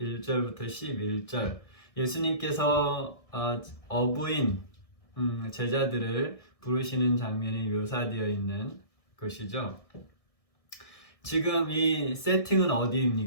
1절부터 11절 예수님께서 어부인 제자들을 부르시는 장면이 묘사되어 있는 것이죠. 지금 이 세팅은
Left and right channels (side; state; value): right; late; 1.6 ms